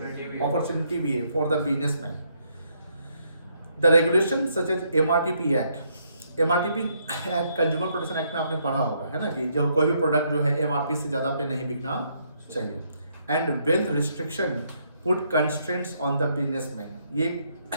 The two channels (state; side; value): inverted; both; correlation -0.73